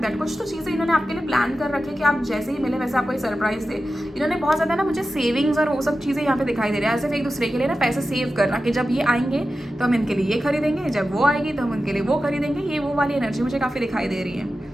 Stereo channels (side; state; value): both; normal; correlation 0.92